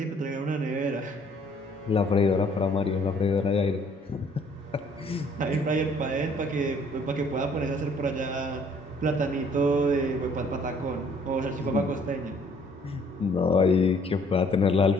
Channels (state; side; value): normal; both; correlation 0.60